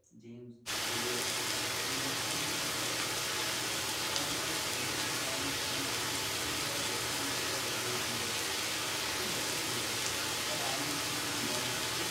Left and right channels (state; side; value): identical; both; correlation 1.00